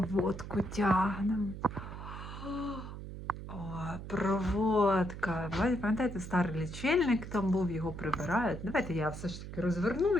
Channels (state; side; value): noise; right; hum, 10 dB below the sound